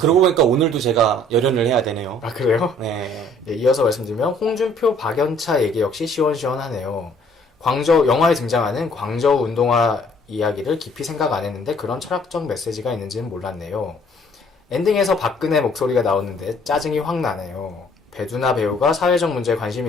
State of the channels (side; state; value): both; normal; correlation 0.59